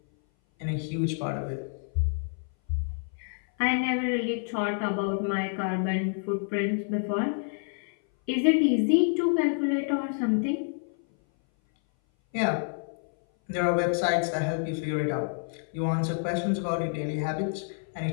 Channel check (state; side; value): silent; right; 58 dB below the other